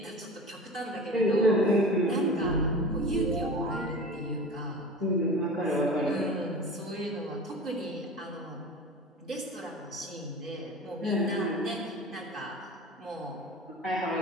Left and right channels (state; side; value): normal; both; correlation 0.35